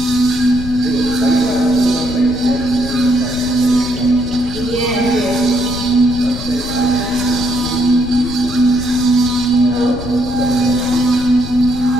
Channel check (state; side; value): noise; left; rumble, 10 dB below the sound